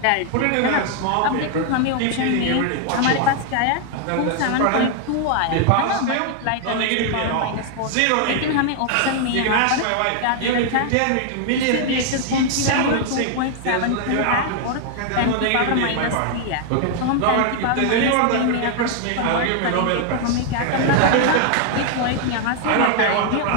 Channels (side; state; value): both; different; correlation 0.00